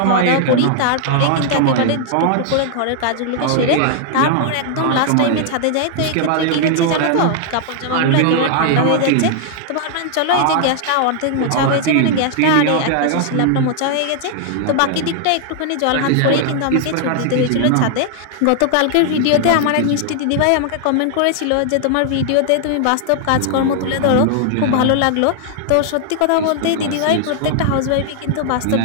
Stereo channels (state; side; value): different; both; correlation 0.00